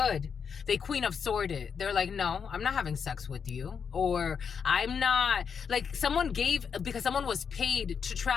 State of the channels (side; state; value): right; quieter; 6.6 dB